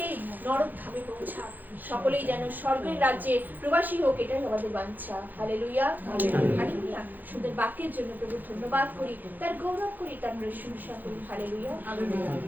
নরক ধামে পৌঁছাক, সকলেই যেন স্বর্গের রাজ্যে প্রবাসী হোক, এটাই আমাদের বাঞ্ছা। Hallelujah, hallelujah. সুন্দর বাক্যের জন্য প্রভু ধন্যবাদ করি, তার গৌরব করি, তার প্রশংসা করি। হালেলুয়া।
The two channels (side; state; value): left; late; 0.085 ms